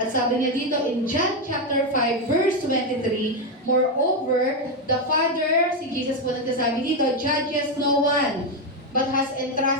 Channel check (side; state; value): both; normal; correlation 0.06